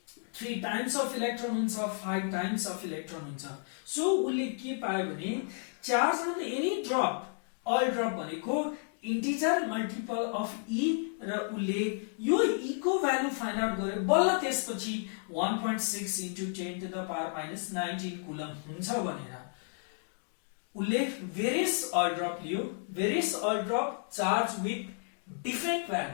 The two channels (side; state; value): right; silent; 56 dB below the other